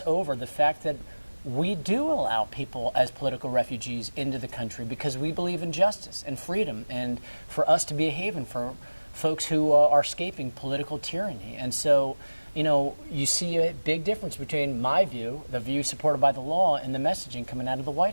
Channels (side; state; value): both; inverted; correlation -1.00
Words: over the fact that we do allow people as political refugees into the country because we believe in justice and freedom and for us to be a haven for folks who are escaping political tyranny. And so, you know, you see a big difference between my view, the view supported by the law, and the messaging coming out of the